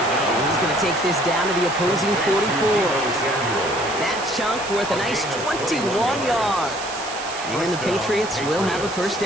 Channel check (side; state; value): right; noise; hiss, 10 dB below the sound